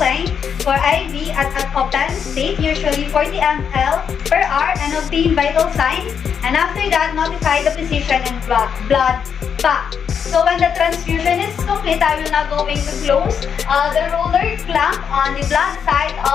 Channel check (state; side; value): quieter; right; 7.3 dB